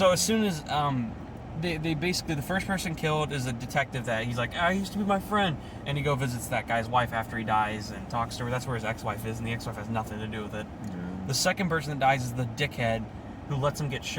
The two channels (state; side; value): identical; both; correlation 1.00